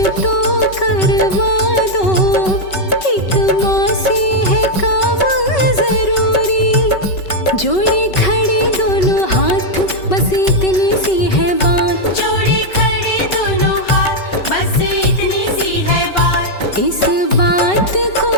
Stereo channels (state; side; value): late; right; 5.3 ms